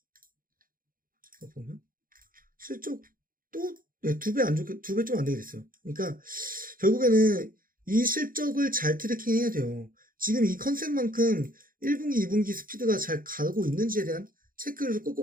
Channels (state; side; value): late; left; 0.41 ms